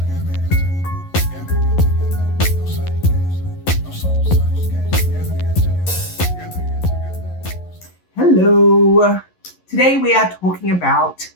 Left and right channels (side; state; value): right; late; 11 ms